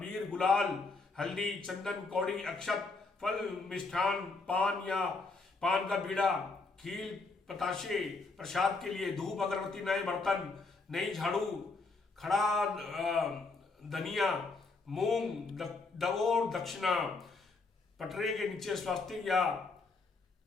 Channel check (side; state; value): right; quieter; 3.9 dB